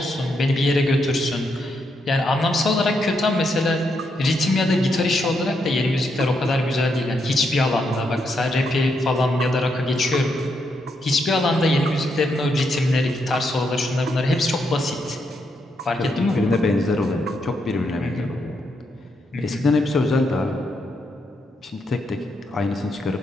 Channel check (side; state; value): both; normal; correlation 0.80